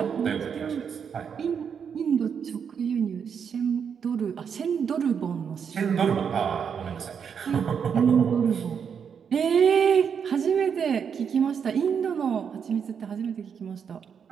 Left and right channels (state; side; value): quieter; left; 7.1 dB